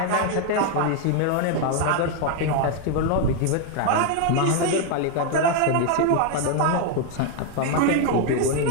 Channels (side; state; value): both; different; correlation 0.01